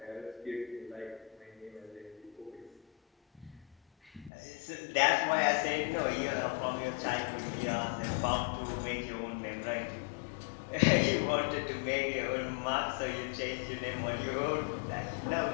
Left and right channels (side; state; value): right; drops out; at 4.3 s